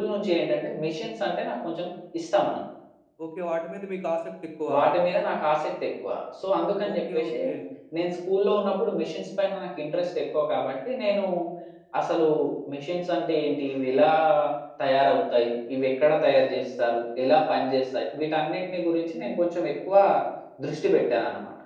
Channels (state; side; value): identical; both; correlation 1.00